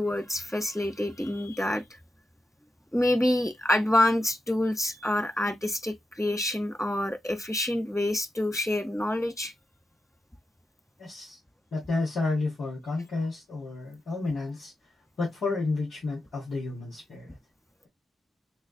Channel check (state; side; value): normal; both; correlation 0.88